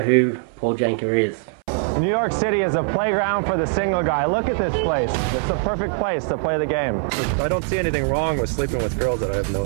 Paul Janka is. New York City is a playground for the single guy. Look at this place. It's the perfect place to play the game. I don't see anything wrong with sleeping with girls that I have no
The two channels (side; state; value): left; silent; 64 dB below the other